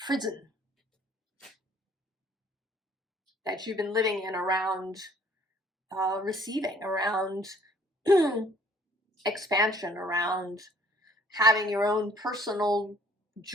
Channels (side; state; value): both; normal; correlation 0.58